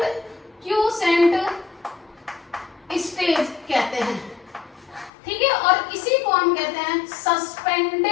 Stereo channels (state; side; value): drops out; right; at 5.1 s